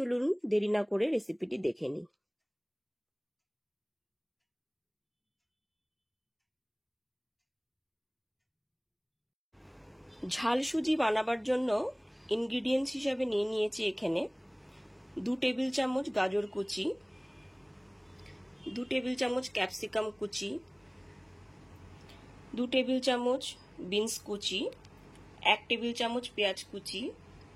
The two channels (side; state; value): both; identical; correlation 1.00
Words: দেরি না করে রেসিপিটি দেখে নিই। ঝাল সুজি বানাবার জন্য ইনগ্রিডিয়েন্টস হিসাবে নিয়ে নিয়েছি এখানে 2 টেবিল চামচ গাজর কুচি, 2 টেবিল চামচ ক্যাপসিকাম কুচি, 2 টেবিল চামচ বিনস কুচি, 1 টেবিল চামচ পেঁয়াজ কুচি,